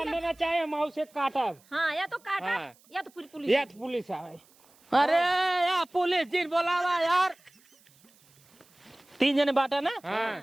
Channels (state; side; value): noise; right; hiss, 30 dB below the sound